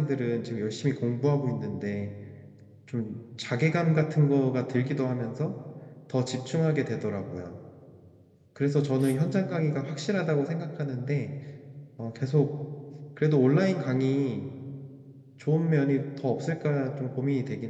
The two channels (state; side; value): identical; both; correlation 1.00